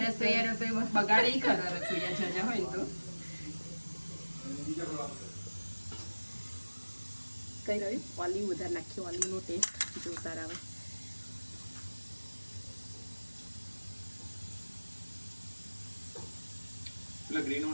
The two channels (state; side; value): inverted; both; correlation -1.00